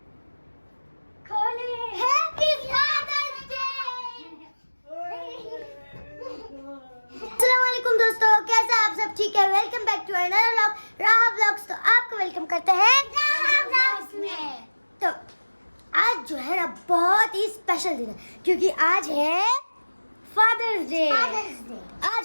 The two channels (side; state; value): both; inverted; correlation -1.00